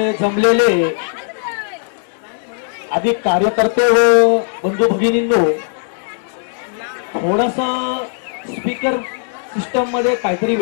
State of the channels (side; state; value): right; silent; digital silence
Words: जमलेले अधिक कार्यकर्ते व बंधू भगिनींनो, थोडस स्पीकर सिस्टम मध्ये काहीतरी